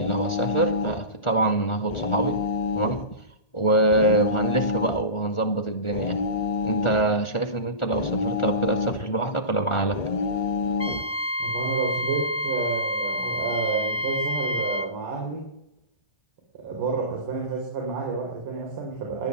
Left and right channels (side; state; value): right; late; 1.4 ms